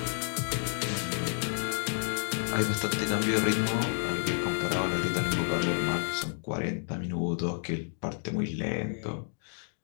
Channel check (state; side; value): silent; right; 58 dB below the other